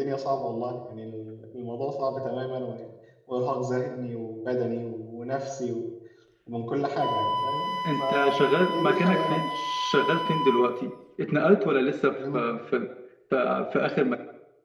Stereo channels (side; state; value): both; identical; correlation 1.00